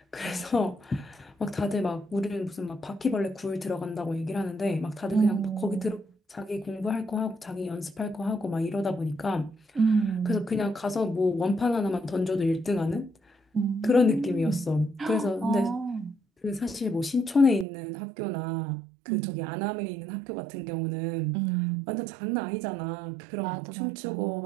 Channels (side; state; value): left; drops out; at 17.7 s